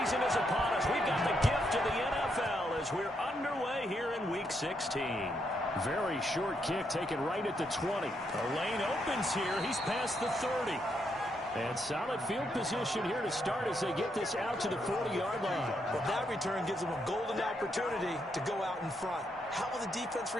is upon us. We've got the gift of the NFL as we're underway here in Week 16. Very short kick taken right at the 20. The lane opens here. He's past the 30. And solid field position here to start as they get this out to the 40-yard line. Well, that return gives them a golden opportunity to go out in front. How will the defense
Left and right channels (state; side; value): normal; both; correlation 0.78